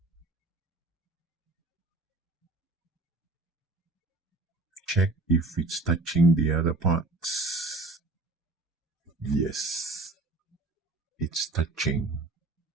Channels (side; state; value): left; quieter; 3.2 dB